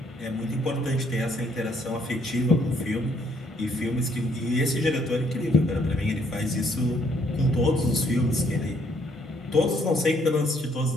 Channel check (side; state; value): both; normal; correlation 0.68